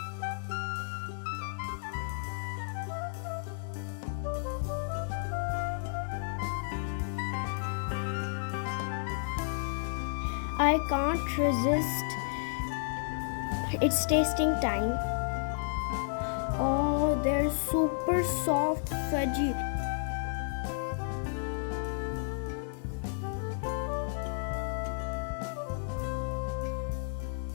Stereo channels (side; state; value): right; silent; digital silence